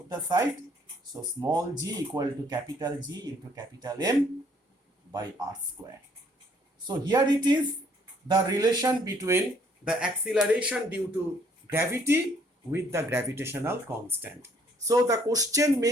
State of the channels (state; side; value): normal; both; correlation 0.64